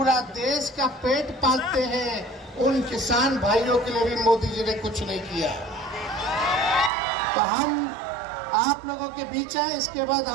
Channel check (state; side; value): drops out; left; at 6.9 s